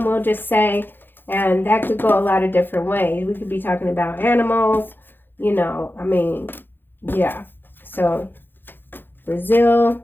we'll just say, and that could go a lot of different ways. We could be talking about animals, you know, I mean, yeah. So,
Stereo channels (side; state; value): right; late; 0.098 ms